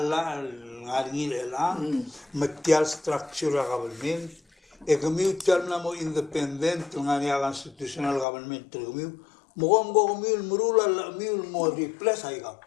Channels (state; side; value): drops out; right; at 8.2 s